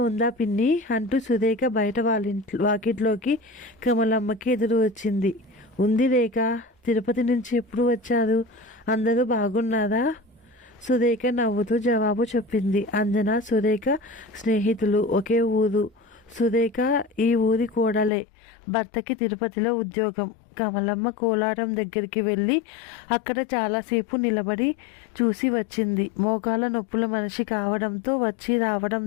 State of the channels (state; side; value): drops out; right; at 18.1 s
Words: ఉందా పిన్ని అంటూ సురేఖ బయట వాకిట్లోకి కమలమ్మకి ఎదురు వచ్చింది. ఉంది రేఖ, తిరుపతి నుంచి ఎప్పుడు వచ్చారు? అందరూ బాగున్నారా? సురేఖ నవ్వుతూ జవాబు చెప్పింది. అంజన, సురేఖ స్నేహితులు, ఒకే ఊరు. సురేఖ ఈ ఊరి కోడలే. భర్తకి తిరుపతిలో ఉద్యోగం. కమలమ్మ కోలాటం దగ్గరికి వెళ్ళి అక్కడ చాలాసేపు నిలబడి చూసి వచ్చింది. మోకాల నొప్పుల మనిషి కావడంతో వచ్చి